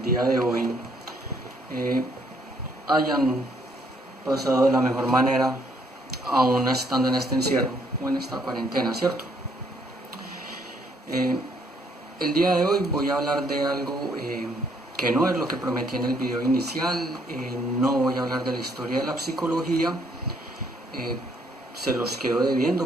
día de hoy hayan pasado de la mejor manera, aún estando en este encierro o en esta cuarentena, ¿cierto? El día de hoy voy a hablar de algo que no es lo que prometí en el video inicial, no voy a hablar de la historia de la psicología, se los quedo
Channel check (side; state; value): both; normal; correlation 0.68